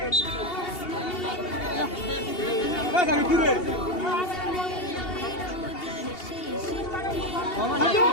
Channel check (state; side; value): late; right; 2.8 ms